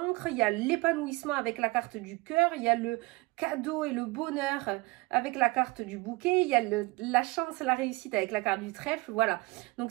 il y a l'épanouissement avec la carte du cœur, il y a le cadeau et le bonheur avec la carte du bouquet, il y a la chance, la réussite avec la carte du trèfle, voilà. Donc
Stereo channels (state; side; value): quieter; left; 23.8 dB